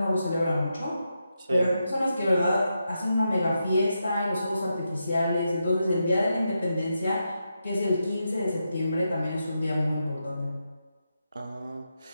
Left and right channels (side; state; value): both; inverted; correlation -0.85